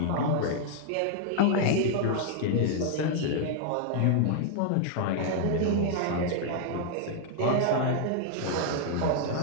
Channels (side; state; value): both; different; correlation 0.00